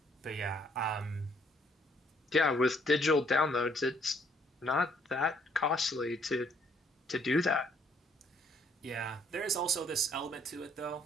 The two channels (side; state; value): both; normal; correlation 0.66